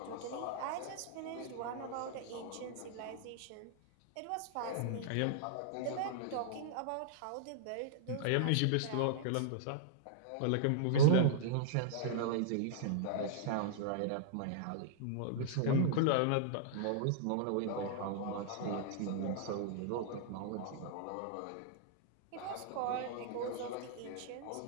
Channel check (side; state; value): both; different; correlation -0.01